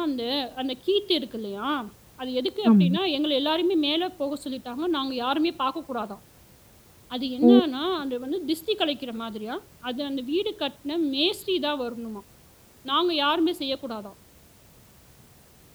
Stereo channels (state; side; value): identical; both; correlation 1.00